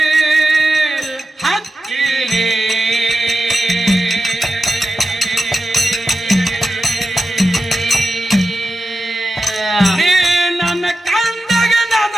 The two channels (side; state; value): both; normal; correlation 0.91